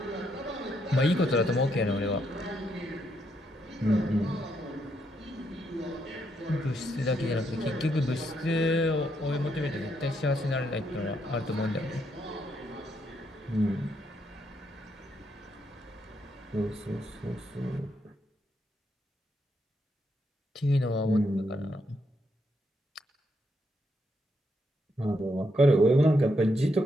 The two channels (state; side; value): normal; both; correlation 0.77